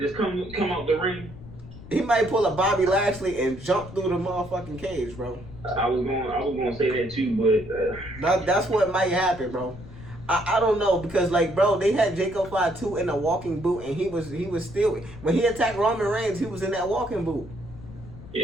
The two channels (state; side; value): noise; left; rumble, 16 dB below the sound